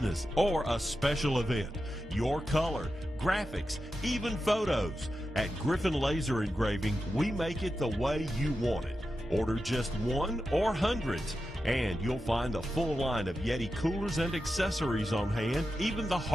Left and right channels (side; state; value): both; normal; correlation 0.90